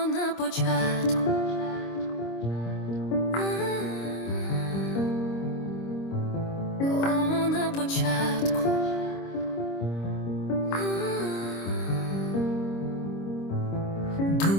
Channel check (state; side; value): late; right; 26 ms